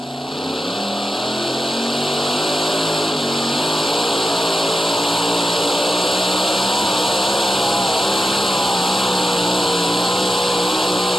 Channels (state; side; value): normal; both; correlation 0.91